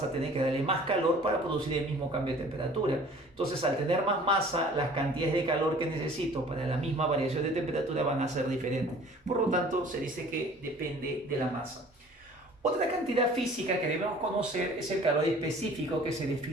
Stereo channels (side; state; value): both; normal; correlation 0.49